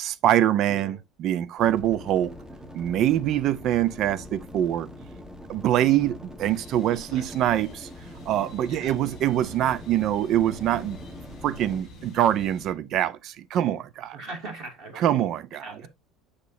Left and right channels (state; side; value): quieter; left; 11.0 dB